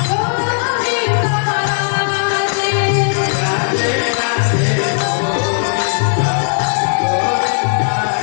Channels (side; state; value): right; silent; digital silence